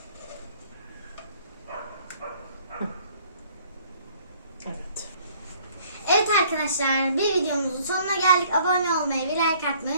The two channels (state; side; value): inverted; both; correlation -0.58